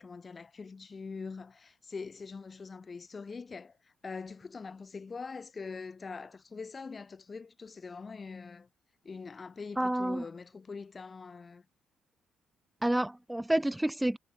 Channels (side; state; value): both; normal; correlation 0.97